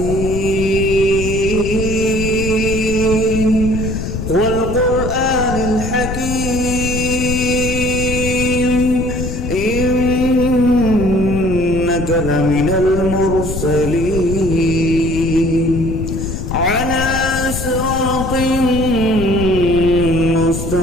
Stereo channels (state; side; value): noise; left; rumble, 5 dB below the sound